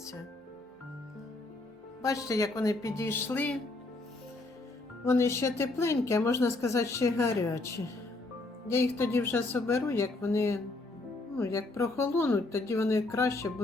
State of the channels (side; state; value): right; quieter; 3.0 dB